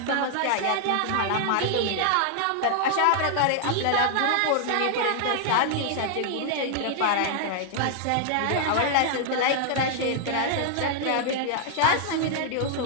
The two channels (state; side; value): different; both; correlation -0.01